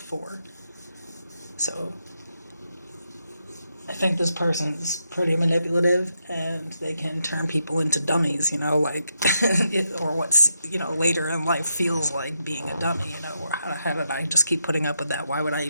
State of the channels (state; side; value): inverted; both; correlation -0.83